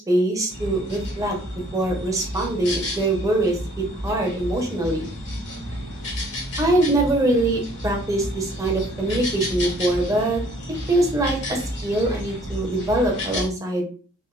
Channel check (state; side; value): normal; both; correlation 0.59